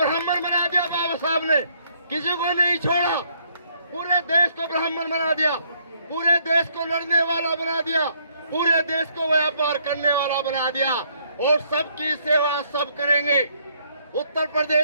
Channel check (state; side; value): inverted; both; correlation -0.68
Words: बना दिया बाबा साहब ने, किसी को नहीं छोड़ा, पूरे देश को ब्राह्मण बना दिया, पूरे देश को लड़ने वाला बना दिया, पूरे देश को व्यापार करने वाला बना दिया, और सबकी सेवा सब करेंगे। उत्तर